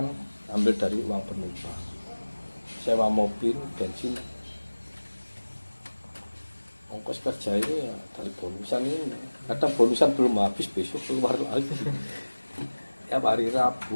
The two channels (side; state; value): both; inverted; correlation -1.00